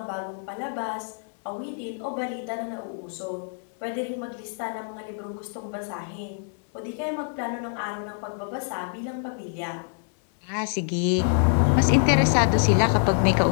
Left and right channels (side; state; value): right; silent; digital silence